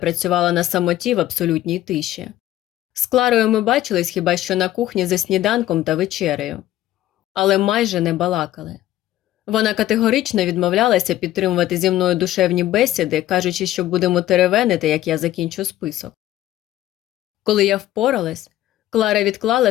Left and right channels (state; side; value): quieter; right; 14.0 dB